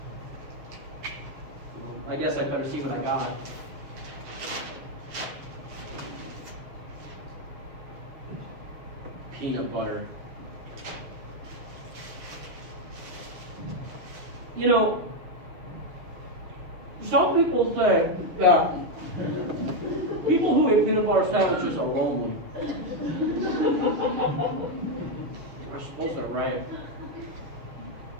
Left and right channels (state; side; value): late; left; 7.0 ms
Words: Well, I guess I'd better see what I got. Peanut butter. You know, some people say that people who eat peanut butter sandwiches are lonely. I suppose they're right.